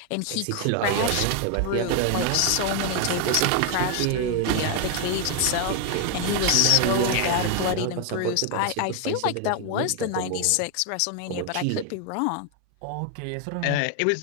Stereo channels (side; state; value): both; different; correlation 0.01